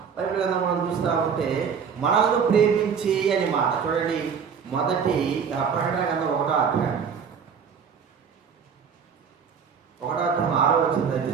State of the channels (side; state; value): left; quieter; 6.7 dB